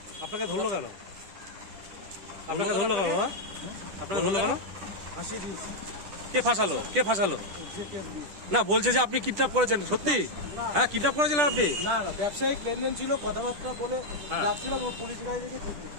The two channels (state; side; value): late; left; 10 ms